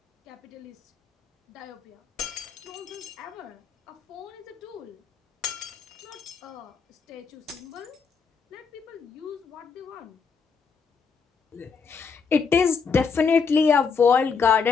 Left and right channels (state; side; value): quieter; right; 5.6 dB